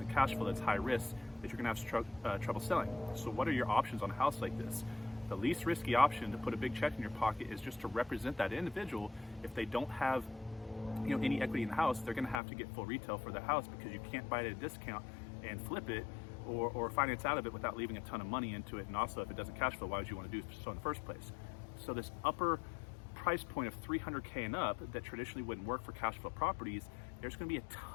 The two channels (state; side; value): drops out; right; at 12.4 s